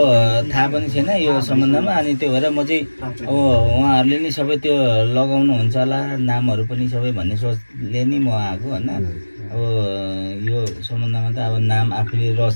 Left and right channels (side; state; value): both; inverted; correlation -1.00